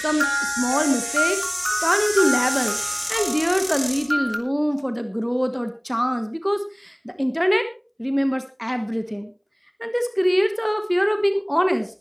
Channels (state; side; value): identical; both; correlation 1.00